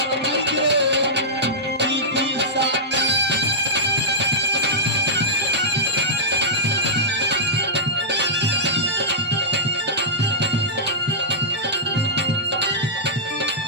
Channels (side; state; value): both; normal; correlation -0.15